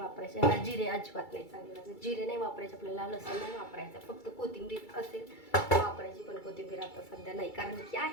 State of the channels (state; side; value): late; right; 2.3 ms